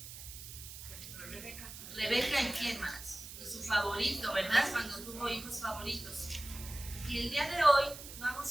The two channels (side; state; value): right; noise; hiss, 12 dB below the sound